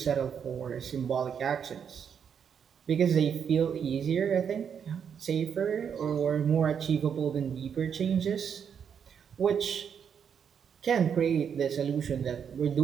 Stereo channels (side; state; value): left; quieter; 7.5 dB